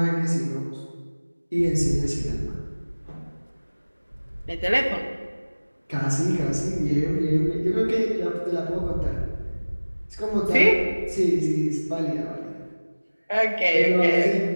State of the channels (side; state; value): both; inverted; correlation -1.00